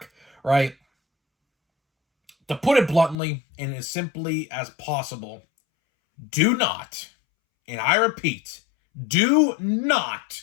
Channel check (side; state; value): right; drops out; at 3.2 s